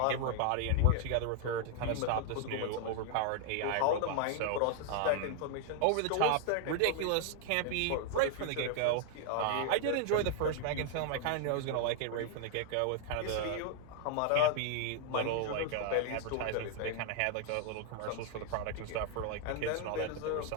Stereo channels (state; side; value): different; both; correlation 0.00